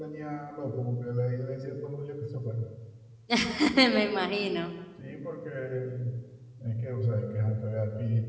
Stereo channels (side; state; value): both; identical; correlation 1.00